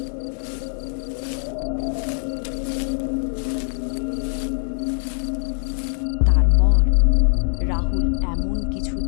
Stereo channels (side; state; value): right; silent; 64 dB below the other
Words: তারপর রাহুল এমন কিছু